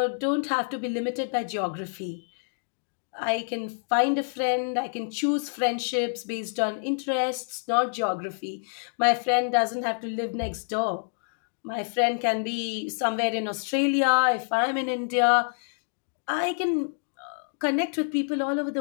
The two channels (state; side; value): silent; right; digital silence